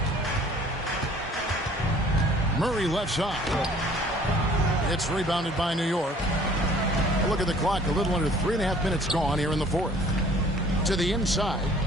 Murray left side. It's rebounded by New York. Look at the clock. A little under 3.5 minutes gone here in the fourth. To the inside.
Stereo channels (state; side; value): normal; both; correlation 0.54